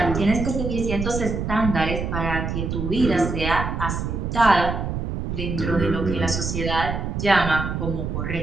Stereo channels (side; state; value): right; noise; rumble, 3 dB below the sound